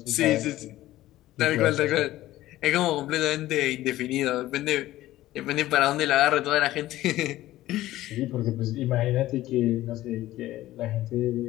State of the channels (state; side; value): quieter; right; 15.5 dB